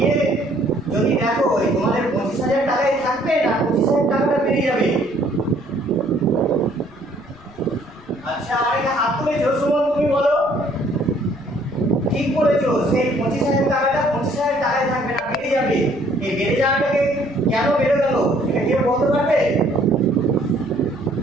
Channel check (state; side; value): noise; left; rumble, 26 dB below the sound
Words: যদি দেখো তোমাদের 25,000 টাকাই থাকবে না 25,000 টাকাটা বেরিয়ে যাবে। আচ্ছা, আরেকটা হাত তুলেছো। সুমন, তুমি বলো। ঠিক বলেছো, সেই 25,000 টাকাটা 25,000 টাকায় থাকবে না, বেড়ে যাবে। এই বেড়ে যাওয়াটাকে কেন বেড়ে গেল এটা কেউ বলতে পারবে?